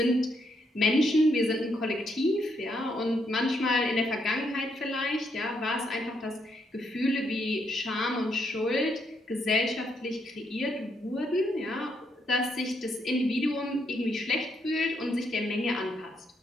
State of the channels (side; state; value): both; normal; correlation 0.76